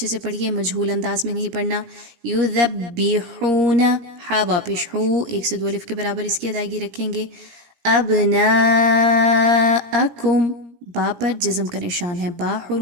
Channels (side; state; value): left; late; 17 ms